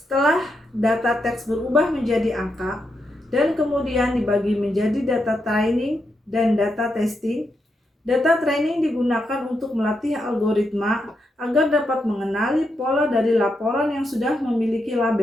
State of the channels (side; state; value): both; normal; correlation 0.83